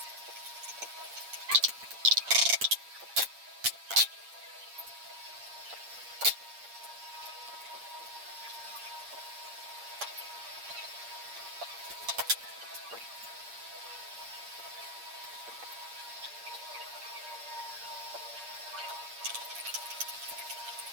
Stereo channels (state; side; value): late; left; 8.5 ms